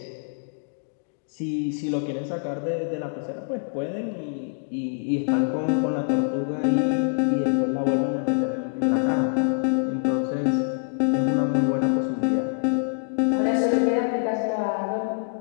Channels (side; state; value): right; silent; digital silence